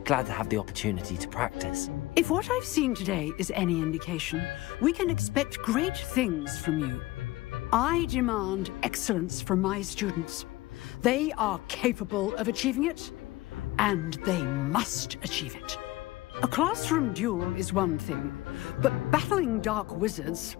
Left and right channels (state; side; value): quieter; right; 18.4 dB